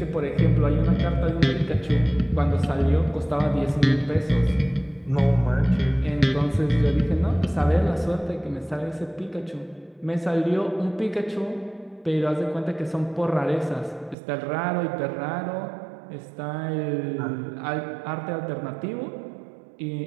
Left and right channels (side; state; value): left; drops out; at 14.2 s